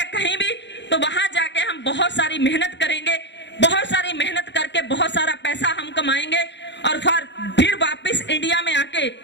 कहीं भी, तो वहां जाके हम बहुत सारी मेहनत करेंगे, बहुत सारी मेहनत करके बहुत सारा पैसा हम कमाएंगे और फिर वापस इंडिया में आके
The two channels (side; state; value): right; late; 0.52 ms